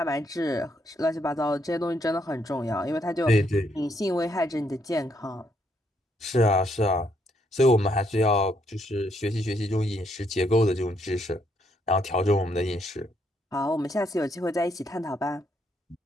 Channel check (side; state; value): both; normal; correlation 0.73